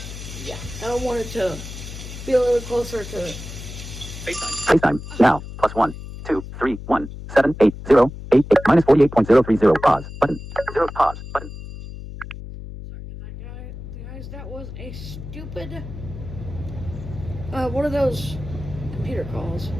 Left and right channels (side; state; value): left; noise; hum, 11 dB below the sound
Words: yeah. I wanted to be a little closer to FaceTime. FaceTime. Now. +1 2 3 1 7 8 0 8 8 minus 48.030. Pause. Button. 0. Pause. Button. Guys, that was a stupid one of those computer calls.